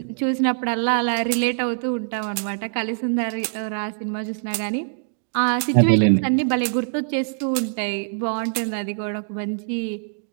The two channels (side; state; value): left; silent; digital silence